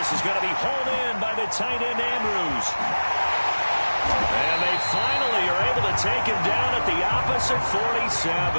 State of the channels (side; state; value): both; inverted; correlation -1.00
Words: is going to be hauled in by the tight end Andrews. And they finally are able to take him down at the opposite